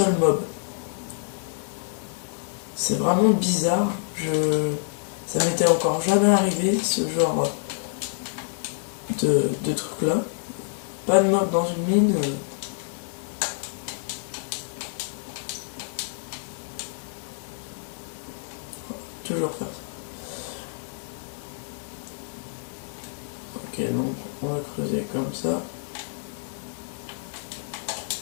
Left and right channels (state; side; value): silent; right; digital silence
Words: mob. C'est vraiment bizarre. Ça m'était encore jamais arrivé, ce genre de truc là. Pas de mob dans une mine. Toujours faire ça. Ok, donc on va creuser comme ça.